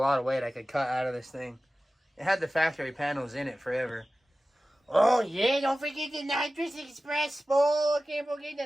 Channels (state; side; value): normal; both; correlation 0.96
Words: of weight I could cut out of this thing. It had the factory panels in it forever. Oh yeah, don't forget the nitrous express spool. Can't forget